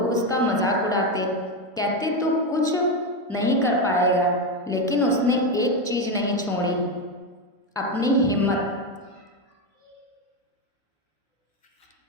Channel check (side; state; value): both; normal; correlation 0.11